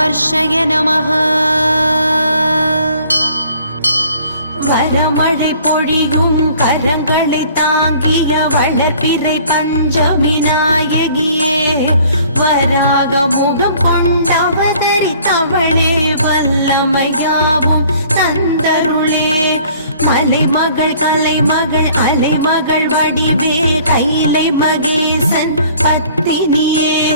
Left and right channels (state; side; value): inverted; both; correlation -0.55